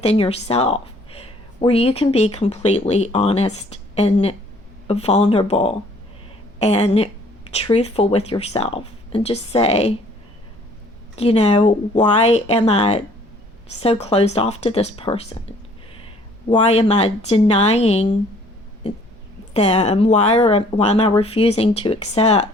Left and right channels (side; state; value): both; normal; correlation 0.58